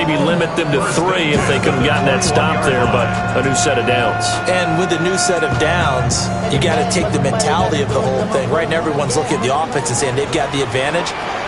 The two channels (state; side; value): identical; both; correlation 1.00